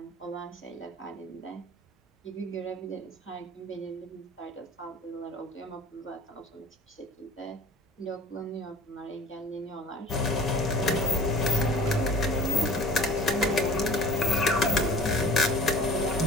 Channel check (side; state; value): both; normal; correlation 0.45